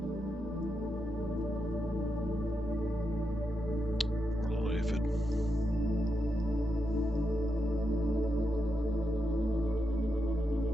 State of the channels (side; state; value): both; normal; correlation 0.85